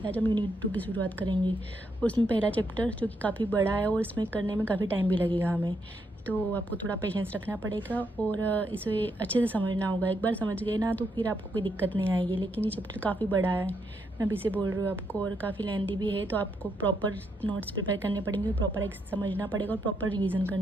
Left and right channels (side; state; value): both; normal; correlation 0.78